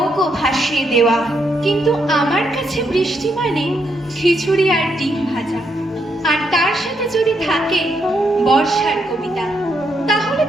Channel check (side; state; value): both; normal; correlation 0.78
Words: ভাসিয়ে দেওয়া। কিন্তু আমার কাছে বৃষ্টি মানে খিচুড়ি আর ডিম ভাজা, আর তার সাথে যদি থাকে বর্ষার কবিতা, তাহলে